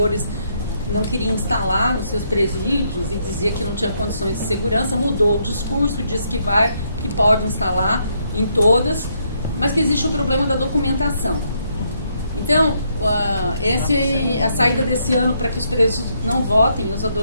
não queria instalar nos seus presídios e dizia que não tinha condições de segurança, mudou o discurso, disse que pode instalar em todas, mas que existe o problema da documentação. Então, a saída desse ano para que os presos não votem, os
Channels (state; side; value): inverted; both; correlation -0.75